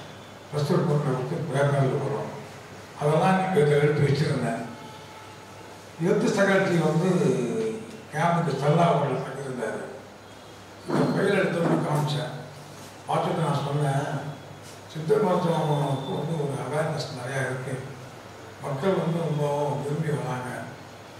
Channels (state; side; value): identical; both; correlation 1.00